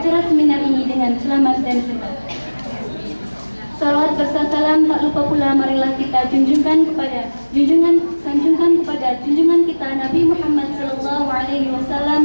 seminar ini dengan selamat dan sehat. Salawat serta salam tak lupa pula marilah kita sanjungkan kepada junjungan kita Nabi Muhammad sallallahu alaihi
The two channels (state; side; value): inverted; both; correlation -1.00